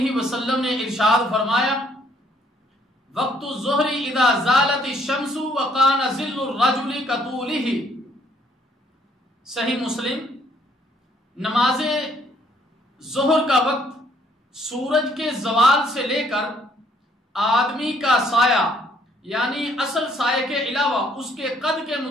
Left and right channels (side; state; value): both; normal; correlation 0.65